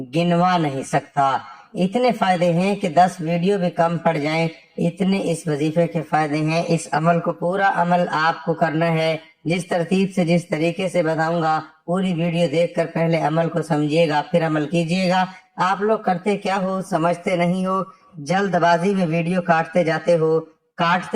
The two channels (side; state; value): both; identical; correlation 1.00